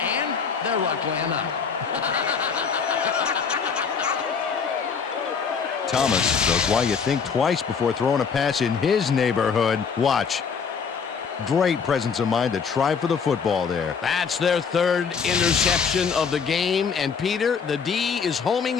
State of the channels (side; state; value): right; quieter; 6.1 dB